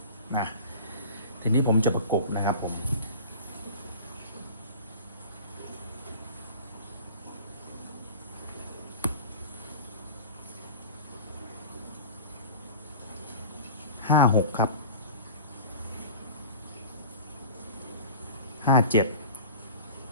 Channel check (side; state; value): both; inverted; correlation -0.39